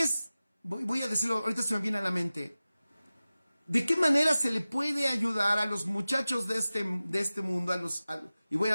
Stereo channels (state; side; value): inverted; both; correlation -0.96